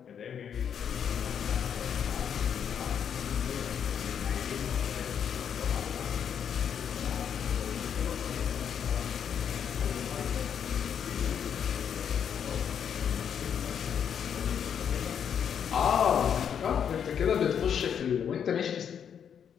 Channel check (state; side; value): quieter; right; 8.1 dB